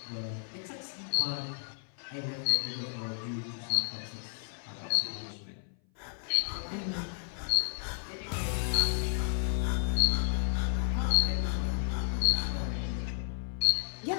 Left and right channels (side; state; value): right; silent; 56 dB below the other